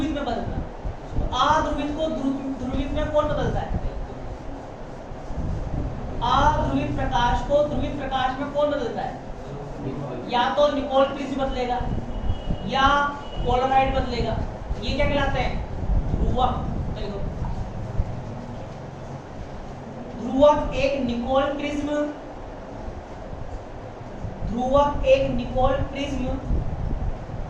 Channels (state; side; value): identical; both; correlation 1.00